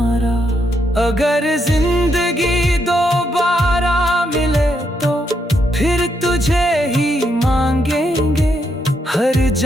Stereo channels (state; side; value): normal; both; correlation 0.78